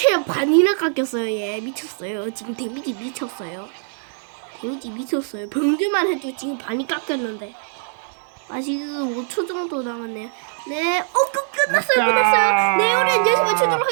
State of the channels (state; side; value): silent; left; 64 dB below the other